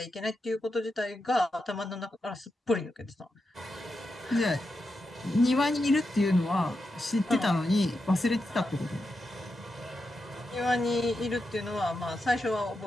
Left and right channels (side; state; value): both; normal; correlation 0.87